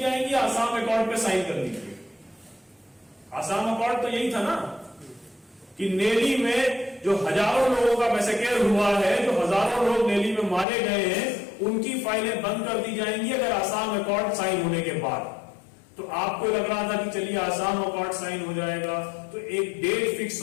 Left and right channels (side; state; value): right; drops out; at 10.7 s